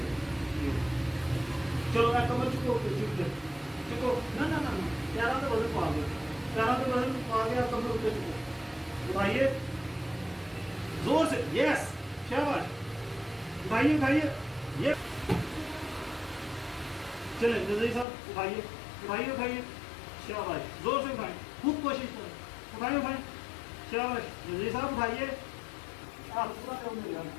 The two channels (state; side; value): drops out; right; at 18.1 s